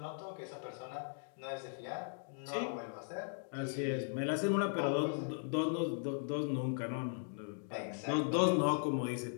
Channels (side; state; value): right; silent; digital silence